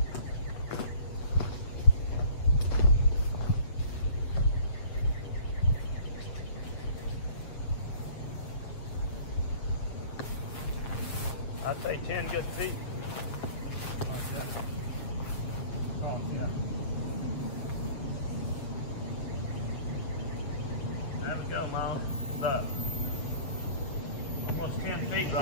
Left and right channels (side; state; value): right; late; 7.7 ms